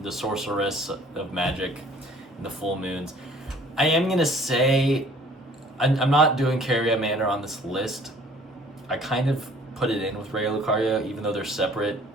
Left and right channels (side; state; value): both; normal; correlation 0.54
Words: sorceress of magic in the full moons. I am gonna say I'm not doing Caria Manor on this list. I kind of put it in with Raya Lucaria, even though they're separate